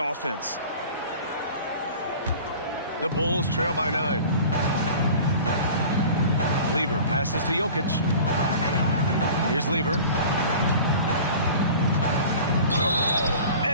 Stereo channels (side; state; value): both; inverted; correlation -0.41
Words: The Bulls trail by 9. Lever passes to Jokic. Here's Lever.